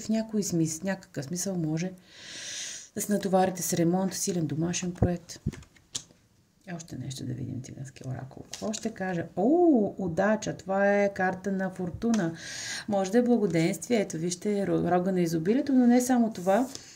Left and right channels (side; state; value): both; identical; correlation 1.00